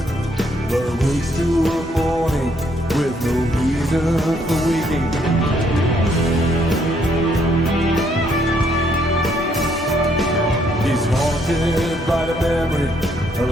but awakes to a morning with no reason for waking. He's haunted by the memory of a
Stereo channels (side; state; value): both; normal; correlation 0.70